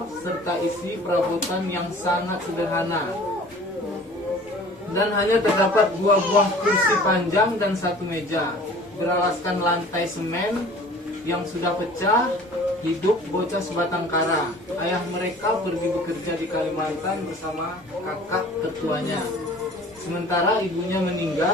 serta isi perabotan yang sangat sederhana. Dan hanya terdapat 2 buah kursi panjang dan 1 meja beralaskan lantai semen yang sudah pecah. Hidup bocah sebatang kara. Ayah mereka pergi bekerja di Kalimantan bersama kakak tertuanya. Sementara ibunya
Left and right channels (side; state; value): both; normal; correlation 0.47